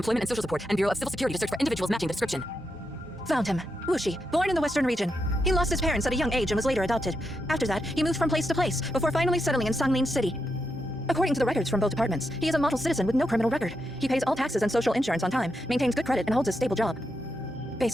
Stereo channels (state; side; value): normal; both; correlation 0.84